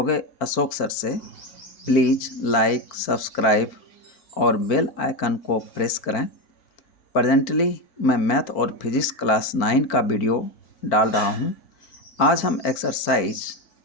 Ashok sir से. Please like, subscribe और bell icon को press करें. Presently मैं math और physics class 9 का video डाल रहा हूं. आज हम एक्सरसाइज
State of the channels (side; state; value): right; late; 4.4 ms